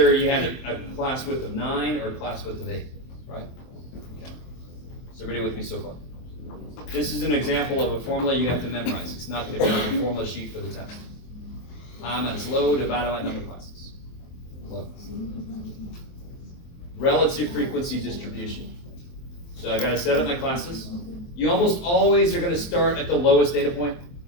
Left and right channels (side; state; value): right; late; 23 ms